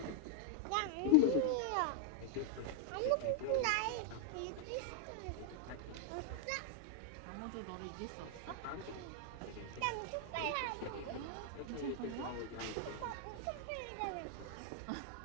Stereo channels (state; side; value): different; both; correlation 0.00